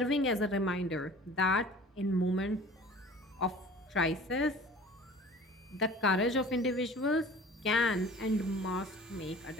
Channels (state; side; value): normal; both; correlation 0.45